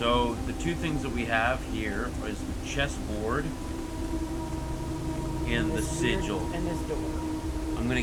the two things that we have here is the chessboard and the This sigil. and this door. I'm gonna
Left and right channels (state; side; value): identical; both; correlation 1.00